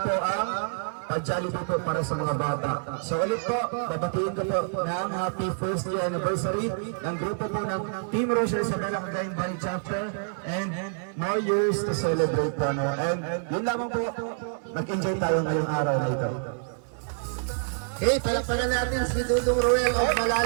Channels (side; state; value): left; silent; 60 dB below the other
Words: po ang pag-Jollibee po para sa mga bata. So ulit po, babatiin ko po ng happy first year anniversary ng grupo po ng Team Rochelle Isabela Cagayan Valley Chapter and more years to celebrate po. No? And yun lamang po, mag-enjoy tayo ngayong araw na ito. Hey, palakpakan natin si Dudong Roel of